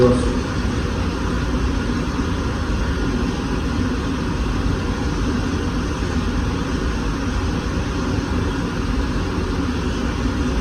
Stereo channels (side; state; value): both; identical; correlation 1.00